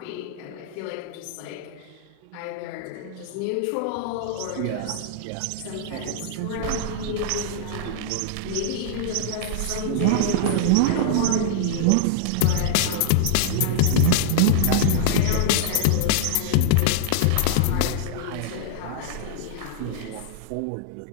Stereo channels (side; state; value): both; different; correlation -0.01